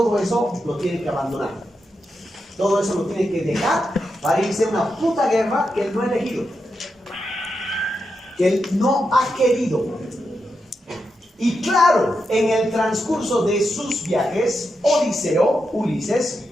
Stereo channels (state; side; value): normal; both; correlation 0.86